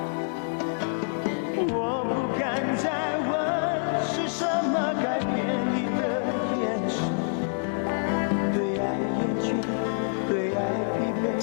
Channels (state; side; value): silent; right; 60 dB below the other